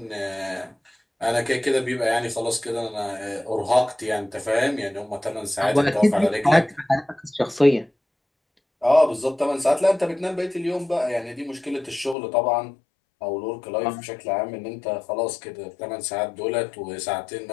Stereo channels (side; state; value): right; drops out; at 12.2 s